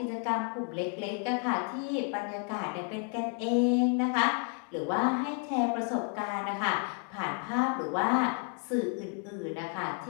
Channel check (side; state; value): right; quieter; 38.5 dB